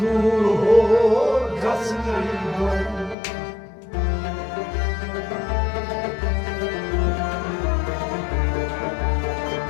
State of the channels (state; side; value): drops out; right; at 3.2 s